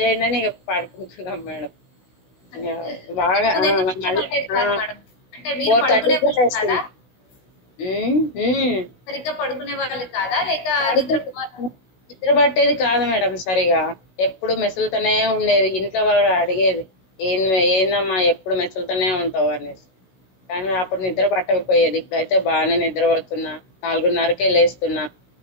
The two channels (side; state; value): right; late; 16 ms